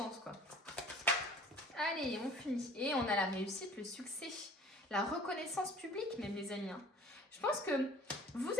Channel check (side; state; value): both; normal; correlation 0.48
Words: quoi. Allez, on finit. Et on a la réussite, le succès, la reconnaissance publique même, les amis. Hein. Je pense que vous